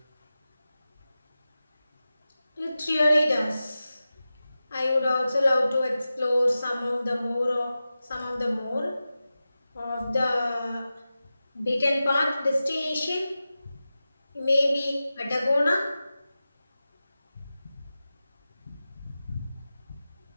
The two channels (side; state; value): both; inverted; correlation -0.94